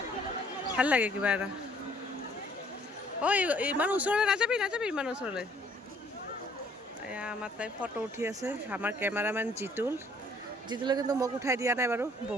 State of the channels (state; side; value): normal; both; correlation 0.61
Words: ভাল লাগে কিবা এটা। ঐ ইমান ওচৰলৈ নাযাবি, ইমান ওচৰলৈ। এয়া আমাৰ তাই ফটো উঠি আছে, আমাৰ কেমেৰামেন জিতুলে কিন্তু মোক উঠাই দিয়া নাই বাৰু,